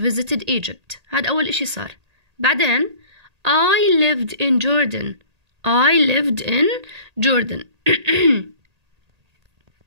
Egypt. هذا أول إشي صار. بعدين I lived in Jordan. I lived in Jordan.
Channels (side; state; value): left; late; 1.8 ms